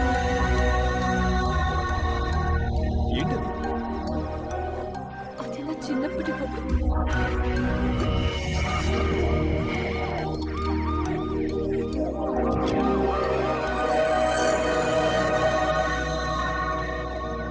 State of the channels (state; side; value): identical; both; correlation 1.00